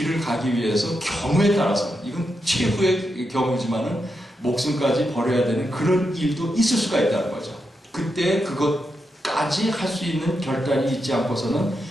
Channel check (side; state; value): both; normal; correlation 0.85